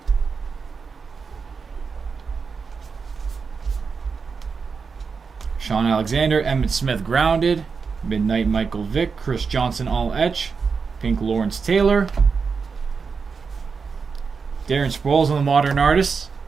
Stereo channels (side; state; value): left; quieter; 5.3 dB